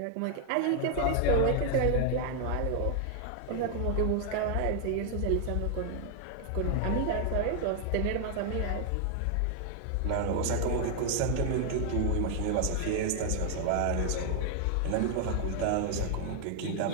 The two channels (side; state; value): both; different; correlation 0.00